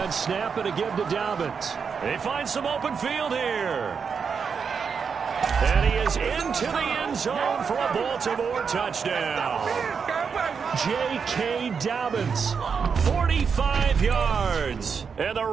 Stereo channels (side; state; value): left; quieter; 6.1 dB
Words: snap and a give to Dobbins. They find some open field here. And he is into the end zone for a Baltimore touchdown. J.K. Dobbins, 45 yards. And the